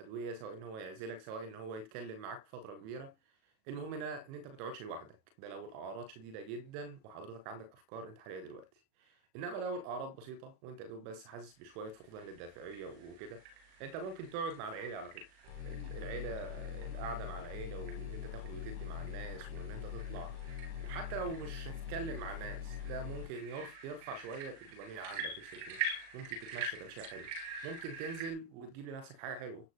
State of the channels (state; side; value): late; left; 37 ms